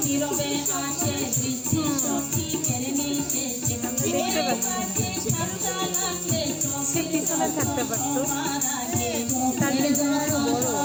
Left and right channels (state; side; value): noise; left; hiss, 29 dB below the sound